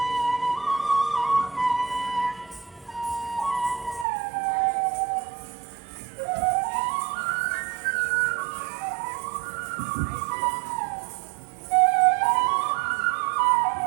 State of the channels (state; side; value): drops out; left; at 4.0 s